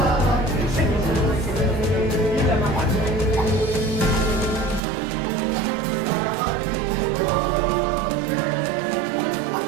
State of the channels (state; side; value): drops out; left; at 4.8 s